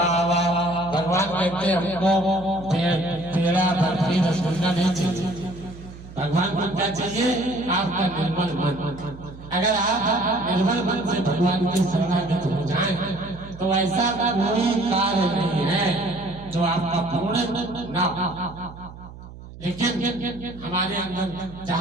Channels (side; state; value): right; noise; hum, 16 dB below the sound